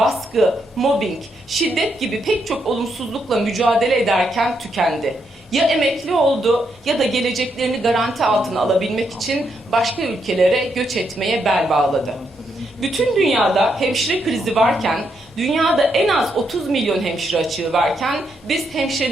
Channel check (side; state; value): both; normal; correlation 0.79